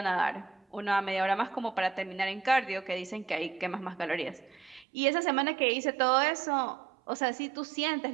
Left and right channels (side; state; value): left; drops out; at 4.9 s